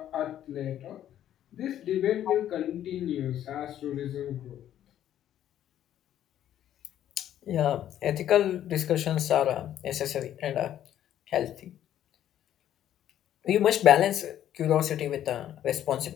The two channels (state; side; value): quieter; right; 11.3 dB